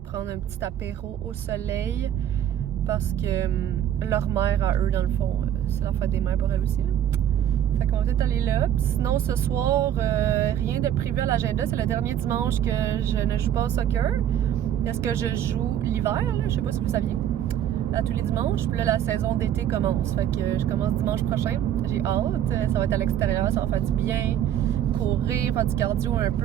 prendre un petit apéro au soleil. Parce que leur mère, à eux, dans le fond, c'est la fête des mères pour elle aussi, là. Fait qu'on va peut-être aller là. Sinon, ce soir, rien de prévu à l'agenda. C'est le dernier dimanche que je ne joue pas au soccer. Parce que je joue l'hiver, là. Je sais pas si vous saviez. À tous les dimanches. Puis là, la saison d'été commence. Fait que je commence dimanche prochain. J'ai hâte. Ça va être à l'extérieur. Ça va faire du bien. Courir, faire du cardio un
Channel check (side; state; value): left; quieter; 10.6 dB